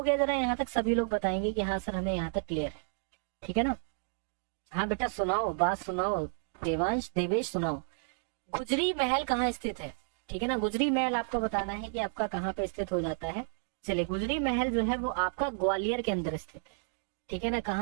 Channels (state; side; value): silent; left; digital silence